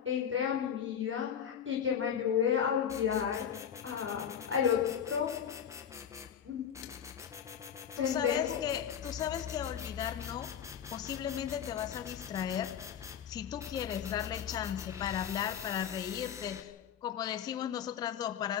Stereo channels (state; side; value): quieter; right; 8.6 dB